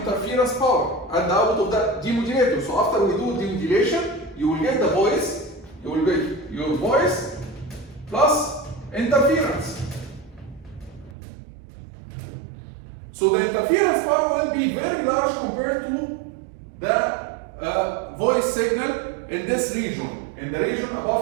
power at the output of the demodulator. So after we do demodulation, you will get the voice, you will get your voice plus interference. So the interference power will be very large compared to the voice signal in this region, in the region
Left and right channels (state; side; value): drops out; left; at 11.2 s